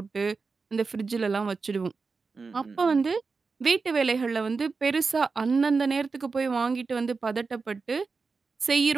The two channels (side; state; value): left; quieter; 4.5 dB